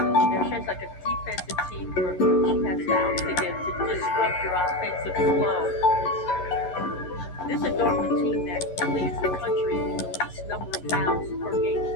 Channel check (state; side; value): late; right; 11 ms